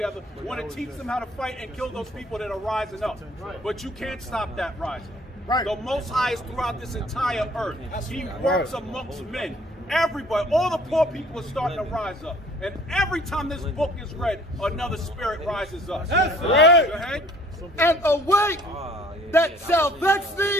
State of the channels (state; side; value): normal; both; correlation 0.54